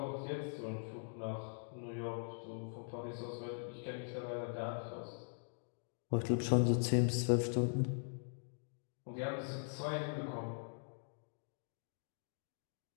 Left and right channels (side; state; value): right; silent; digital silence